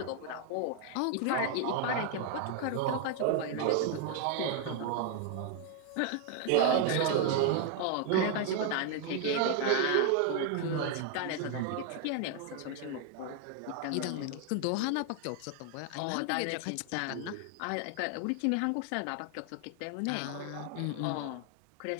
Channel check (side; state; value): both; different; correlation 0.00